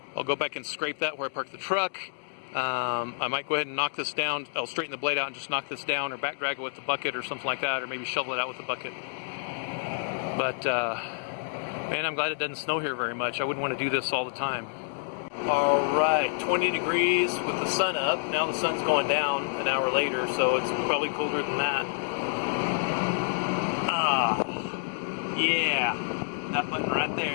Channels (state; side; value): silent; right; digital silence